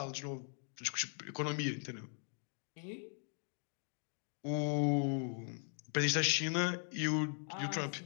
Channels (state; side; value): silent; right; 51 dB below the other